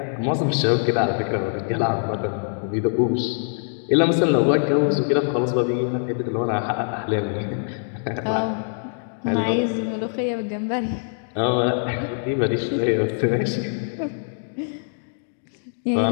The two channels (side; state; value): right; silent; digital silence